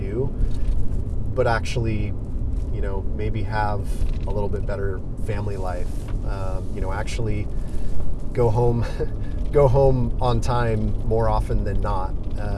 but actually, maybe have a little bit better family life, actually go home on time more often than not,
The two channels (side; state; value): both; identical; correlation 1.00